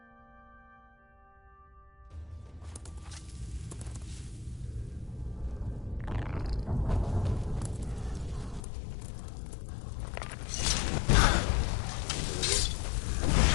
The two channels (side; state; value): right; drops out; at 8.6 s